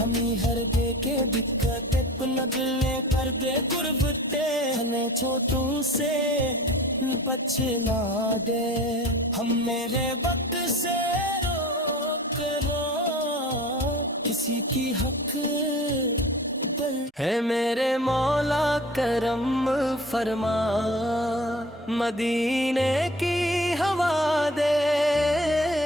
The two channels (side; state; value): both; normal; correlation 0.41